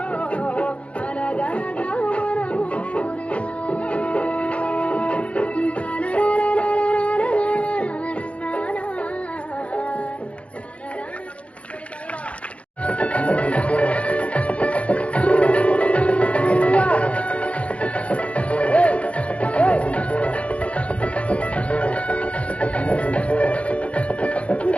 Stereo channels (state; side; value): late; right; 0.063 ms